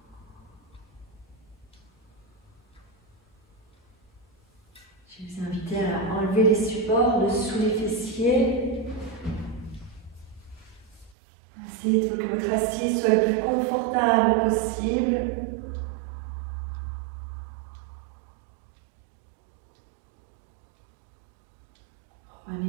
Je vais vous inviter à enlever les supports de sous les fessiers. Essayez que votre assise soit le plus confortable possible.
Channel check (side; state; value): left; drops out; at 11.2 s